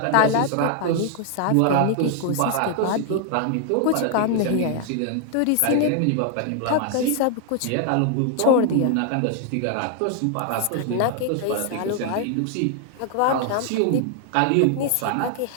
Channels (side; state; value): both; different; correlation 0.00